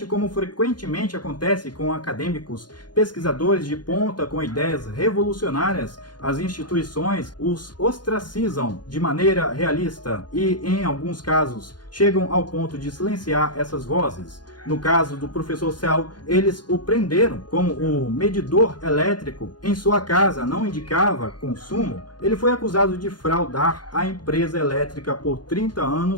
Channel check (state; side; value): late; right; 0.71 ms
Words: como frequentemente acontece com acadêmicos, pesquisadores de ponta com ideias revolucionárias, as instituições os ostracizam de maneira realista e, em alguns casos, chegam ao ponto de silenciar essas vozes. No caso do professor Cell, eles o prenderam como o medidor elétrico em sua casa não indicava consumo. Ele foi acusado de fraudar a empresa elétrica por 30